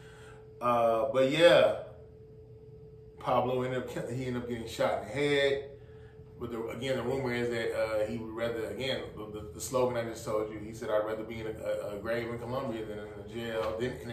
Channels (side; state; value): both; identical; correlation 1.00